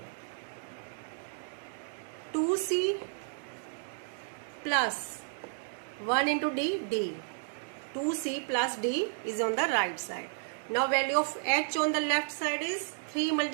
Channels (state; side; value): silent; left; digital silence